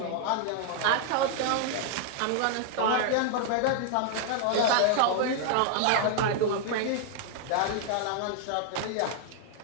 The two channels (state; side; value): different; both; correlation 0.00